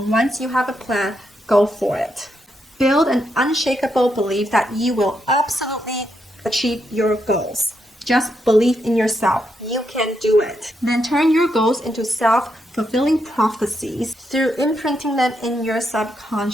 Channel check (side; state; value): both; normal; correlation 0.80